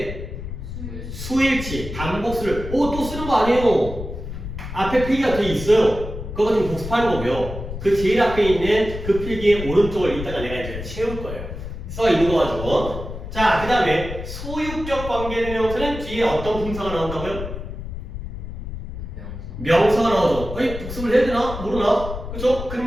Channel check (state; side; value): noise; left; rumble, 8 dB below the sound